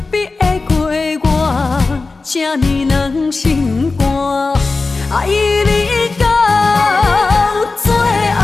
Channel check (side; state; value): right; quieter; 3.8 dB